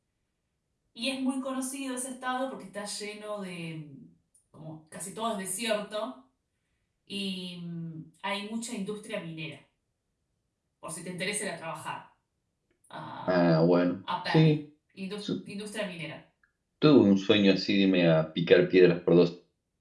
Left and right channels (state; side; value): identical; both; correlation 1.00